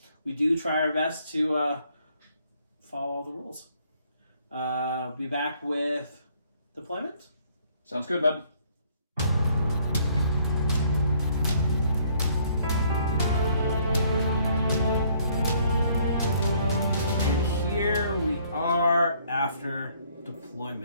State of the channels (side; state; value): both; inverted; correlation -0.64